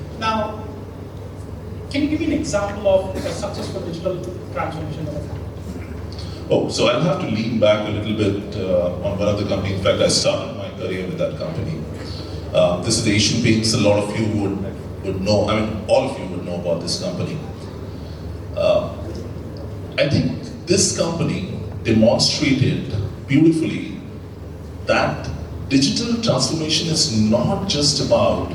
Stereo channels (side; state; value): both; identical; correlation 1.00